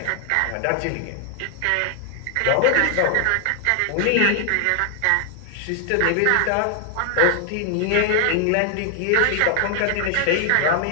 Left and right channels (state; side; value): different; both; correlation 0.00